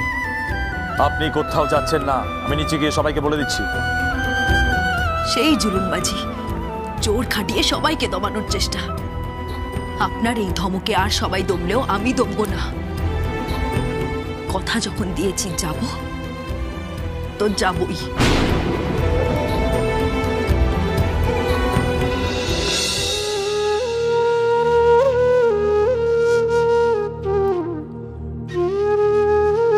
আপনি কোথাও যাচ্ছেন না, আমি নিচে গিয়ে সবাইকে বলে দিচ্ছি। সেই জুলুমবাজি, জোর খাটিয়ে সবাইকে দমানোর চেষ্টা। আপনার এই ধমকে আর সবাই দমলেও আমি দমবো না। কথা যখন দিয়েছি যাব তো যাবই।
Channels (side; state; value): both; identical; correlation 1.00